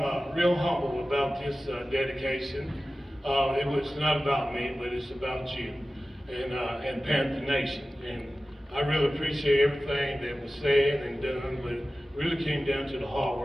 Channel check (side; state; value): both; normal; correlation 0.95